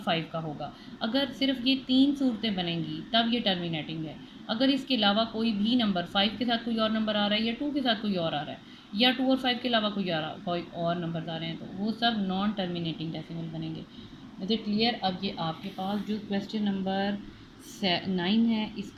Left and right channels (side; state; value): both; identical; correlation 1.00